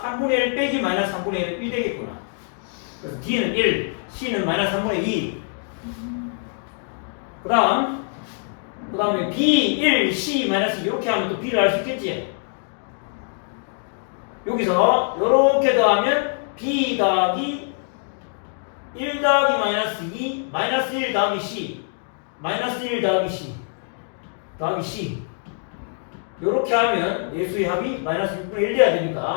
3분의 1 빼기 마이너스 3분의 1은 1 되겠구나. 그래서 D는 1, C는 마이너스 3분의 2. 그 다음에 B, 1, C, 마이너스 이렇게 하면 또 B를 알 수 있겠지? 여기서 이렇게 더하면 B 더하기 1 더하기 마이너스 2, 마이너스 1 더하기 C, 마이너스 1 더하기 C, 더하기 C. 요렇게 하면 예수의 합이 마이너스 6분의 1 돼야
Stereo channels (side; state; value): right; silent; 56 dB below the other